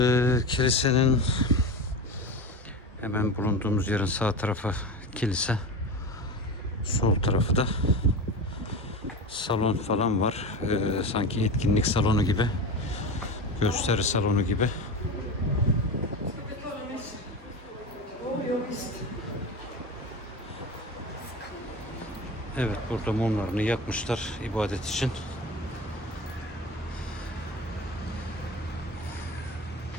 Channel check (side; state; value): both; normal; correlation 0.27